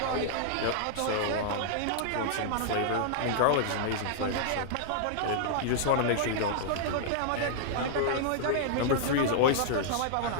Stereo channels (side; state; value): both; different; correlation -0.01